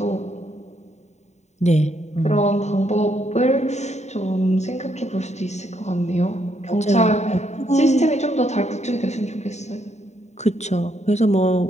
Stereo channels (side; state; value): right; late; 0.33 ms